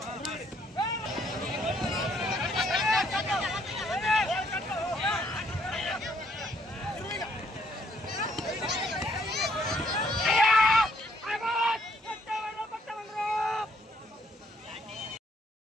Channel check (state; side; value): normal; both; correlation 0.68